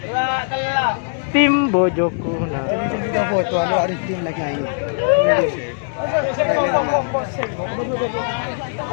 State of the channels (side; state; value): right; silent; digital silence